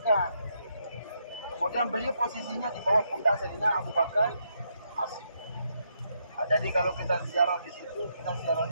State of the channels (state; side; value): inverted; both; correlation -0.77